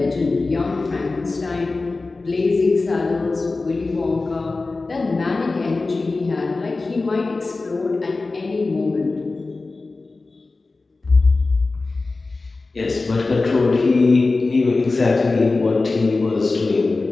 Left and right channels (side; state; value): right; quieter; 3.6 dB